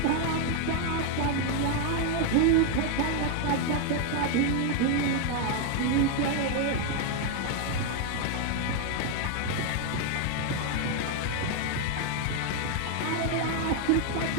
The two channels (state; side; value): different; both; correlation 0.00